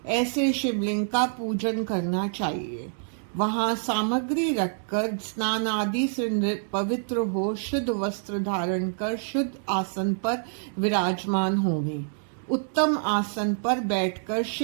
ऐसे शिवलिंग का पूजन करना चाहिए। वहां सामग्री रखकर स्नान आदि से पवित्र हो, शुद्ध वस्त्र धारण कर शुद्ध आसन पर विराजमान होवें। उत्तम आसन पर बैठकर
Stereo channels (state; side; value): silent; left; digital silence